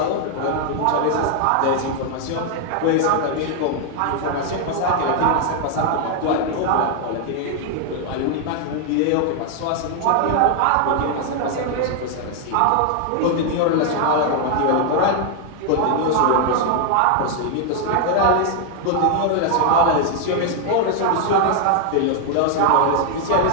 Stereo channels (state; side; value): different; both; correlation 0.00